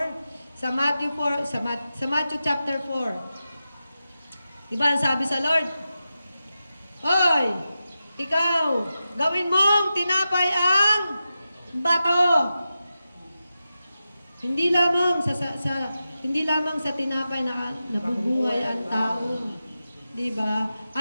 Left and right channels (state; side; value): inverted; both; correlation -0.92